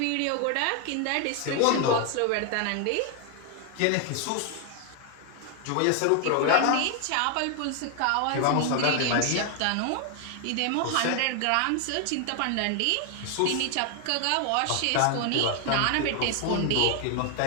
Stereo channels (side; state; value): both; different; correlation 0.00